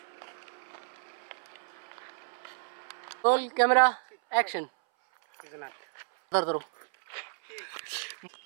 Roll camera action. इधर करो।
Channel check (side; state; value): left; silent; 57 dB below the other